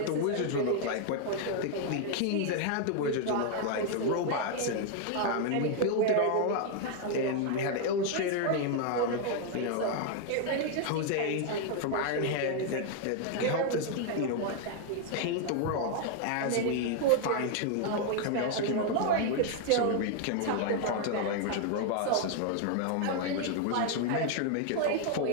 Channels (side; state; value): both; different; correlation 0.00